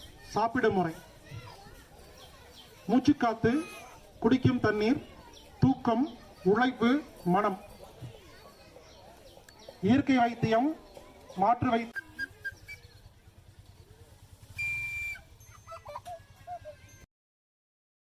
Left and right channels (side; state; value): both; identical; correlation 1.00